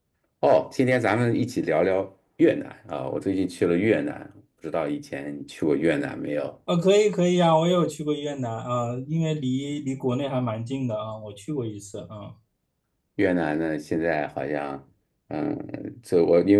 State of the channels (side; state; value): both; identical; correlation 1.00